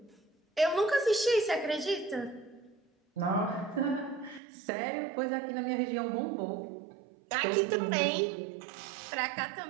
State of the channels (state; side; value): drops out; left; at 4.4 s